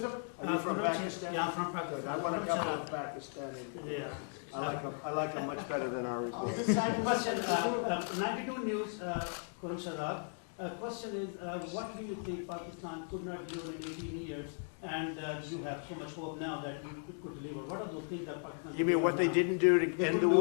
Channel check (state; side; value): silent; right; 54 dB below the other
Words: Are you from Pakistan? Yeah, I'm from Pakistan. I want to couple of Pakistani. Yeah. I like them much better than our report. This side question, 92 News, Khurram Shadab. Question is, what do you think Pakistan could not deliver in 18 years, and you have so much hope now that you could deliver? What are those things that Pakistan? You mean what they didn't do to end the